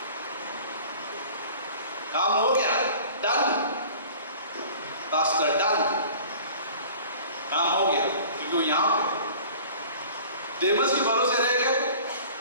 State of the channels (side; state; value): both; inverted; correlation -0.45